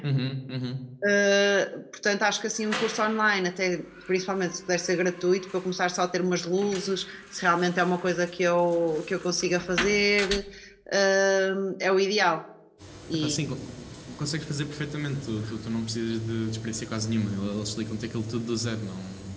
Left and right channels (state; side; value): identical; both; correlation 1.00